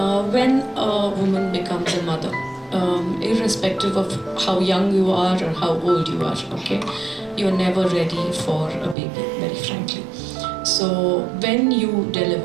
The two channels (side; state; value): left; drops out; at 9.0 s